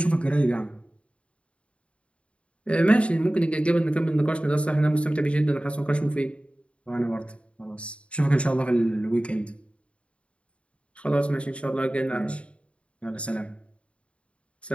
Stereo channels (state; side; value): late; right; 0.060 ms